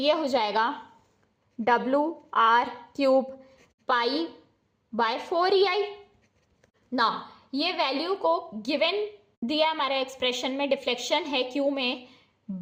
हो जाएगा WR cube pi by 4 EI। ना ये वैल्यू को गिवन दिया हमारे एक्सप्रेशन में, डिफ्लेक्शन है Q में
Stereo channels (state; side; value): identical; both; correlation 1.00